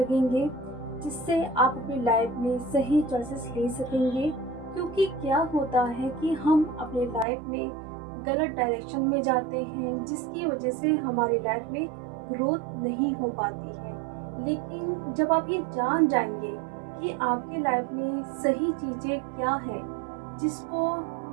जिससे आप अपनी लाइफ में सही चॉइसेस ले सकेंगे। क्योंकि क्या होता है कि हम अपने लाइफ में गलत डायरेक्शन में जाते हैं, जिसकी वजह से हमारी लाइफ में ग्रोथ नहीं हो पाती है। लेकिन जब आप ये जान जाएंगे कि आपकी लाइफ में सही चीज़ें क्या है, जिसको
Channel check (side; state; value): left; drops out; at 7.2 s